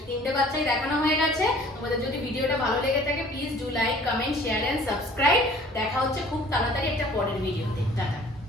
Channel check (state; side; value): normal; both; correlation 0.51